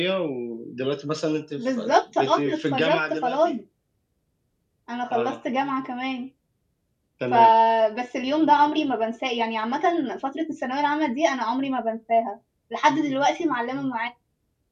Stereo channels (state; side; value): identical; both; correlation 1.00